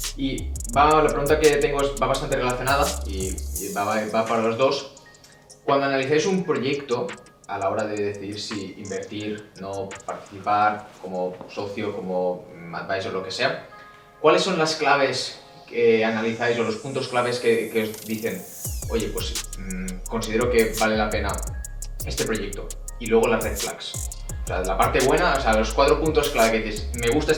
Y la pregunta que tengo va bastante relacionada y va para los dos. Cuando analizáis un proyecto, a la hora de decidir si invertir, no participar, como socio, como advisor, lo que sea, ¿cuáles son las claves que analizáis o los puntos claves que os dicen, oye, pues considero que vale la pena este proyecto? Y luego las red flags. O sea, la parte buena, o sea, los 4 puntos clave que dices, me gusta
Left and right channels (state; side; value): identical; both; correlation 1.00